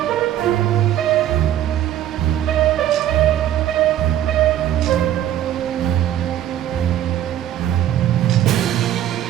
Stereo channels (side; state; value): left; quieter; 11.7 dB